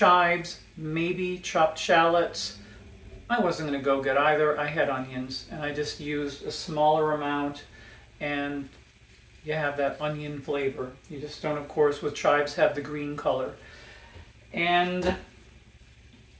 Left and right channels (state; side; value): identical; both; correlation 1.00